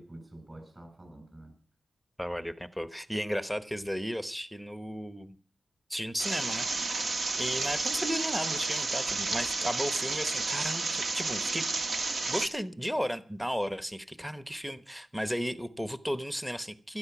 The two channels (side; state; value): both; normal; correlation 0.94